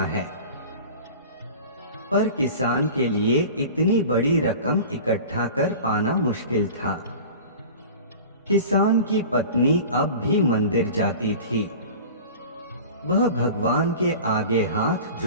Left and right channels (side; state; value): both; inverted; correlation -0.38